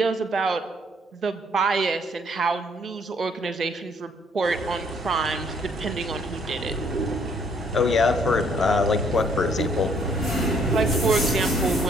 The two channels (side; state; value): both; normal; correlation 0.64